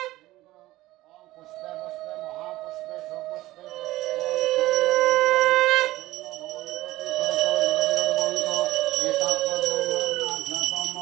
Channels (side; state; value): left; quieter; 17.1 dB